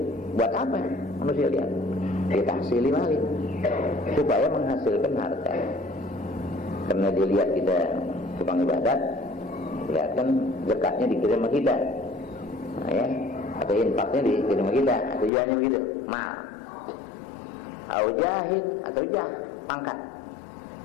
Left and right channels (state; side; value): drops out; right; at 15.3 s